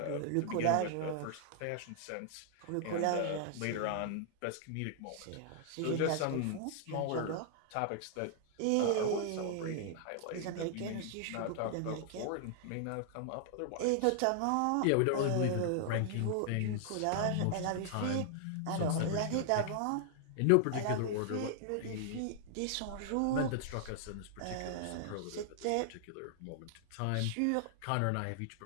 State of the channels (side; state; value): both; different; correlation 0.00